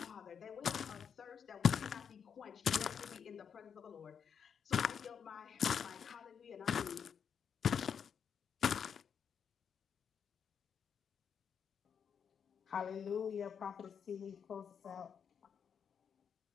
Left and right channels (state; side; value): quieter; right; 7.3 dB